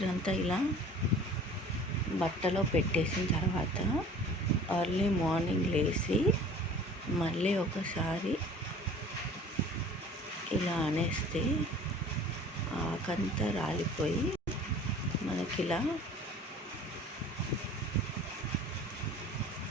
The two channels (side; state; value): both; normal; correlation 0.46